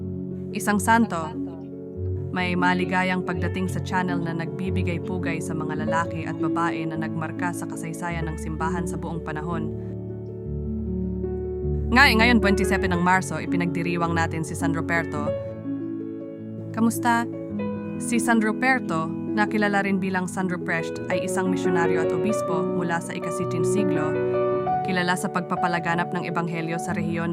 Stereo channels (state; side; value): identical; both; correlation 1.00